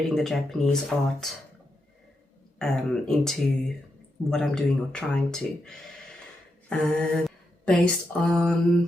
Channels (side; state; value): both; normal; correlation 0.84